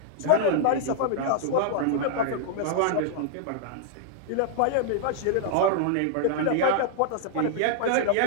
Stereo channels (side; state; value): both; different; correlation -0.01